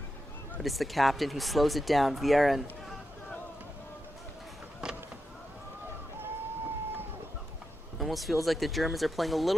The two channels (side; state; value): both; normal; correlation 0.87